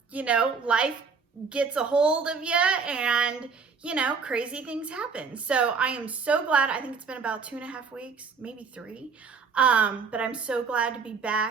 You know, life gets a hold of you and, you know, crazy things happen. So I am so glad. I think it's been about 2.5 weeks, maybe 3. But I'm so glad to be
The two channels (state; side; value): quieter; left; 5.3 dB